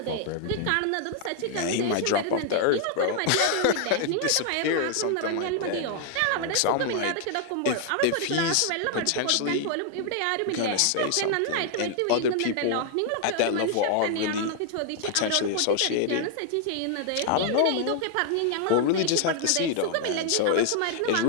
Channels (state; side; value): different; both; correlation 0.00